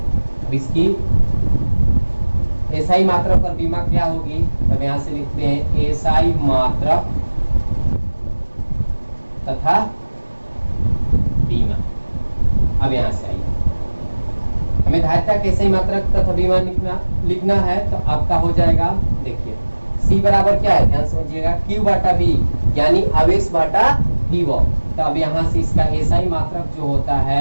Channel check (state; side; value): inverted; both; correlation -1.00